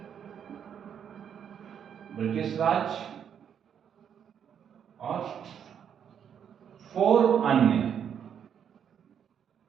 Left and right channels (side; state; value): left; quieter; 8.3 dB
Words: ब्रिटिश राज और 4 अन्य।